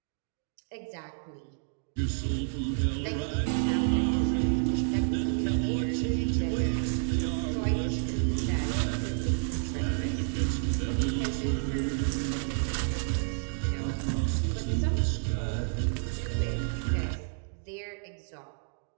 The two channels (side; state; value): left; silent; digital silence